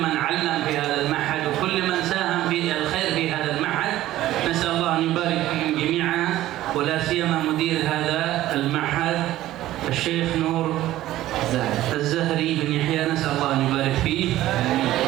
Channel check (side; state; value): left; quieter; 14.7 dB